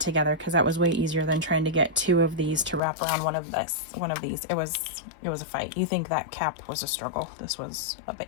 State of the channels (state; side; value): drops out; right; at 2.8 s